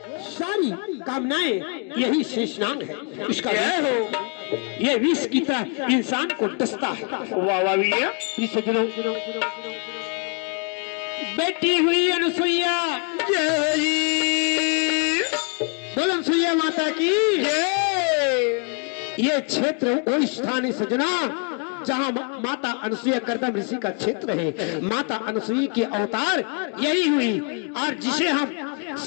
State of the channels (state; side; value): quieter; right; 36.9 dB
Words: सारी कामनाएं यही शेषनाग है। इसका ये विष की तरह इंसान को डसता है। बेटी हुई अनुसुईया। बोल अनुसुईया माता की। ये क्षेत्र वो स्थान है सजना जहाँ माता अनुसुईया कर्दम ऋषि का क्षेत्र है। माता अनुसुईया की अवतार यही हुई, और जिसे हम